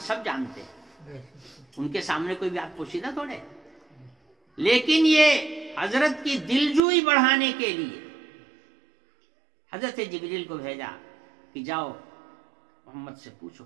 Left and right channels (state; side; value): drops out; left; at 6.8 s